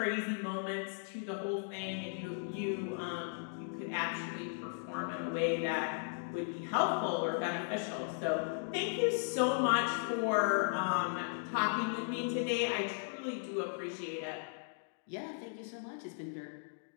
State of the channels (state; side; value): silent; right; digital silence